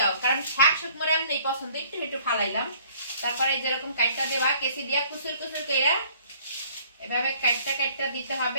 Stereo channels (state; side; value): inverted; both; correlation -0.57